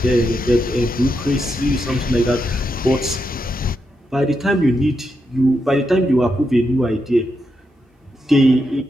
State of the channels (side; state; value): both; normal; correlation 0.84